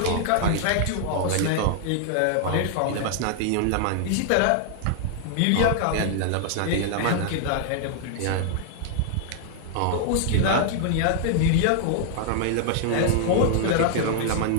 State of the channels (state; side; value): different; both; correlation -0.01